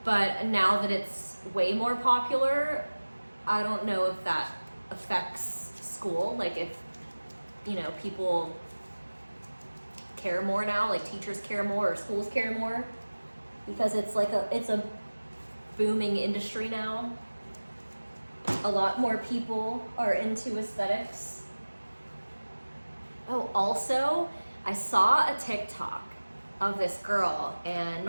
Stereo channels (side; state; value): both; inverted; correlation -1.00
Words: But now that it's way more popular, I don't know if that affects school. Like, if, you know, people care more now, like teachers care more or schools care more, because it's like it's a booming industry now. A lot more people are into aesthetics. Oh, also, I saw a TikTok of this girl, and